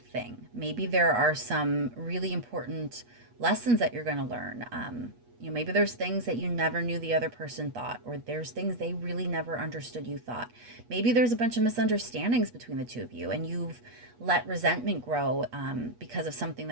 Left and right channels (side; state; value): left; late; 8.3 ms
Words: thing. Maybe there are some really important lessons that you're going to learn. You know, maybe there's things that you never knew the other person thought, or there's things they really never understood you thought. Maybe there's a bunch of misunderstandings between the two of you, and you've let resentment grow because of something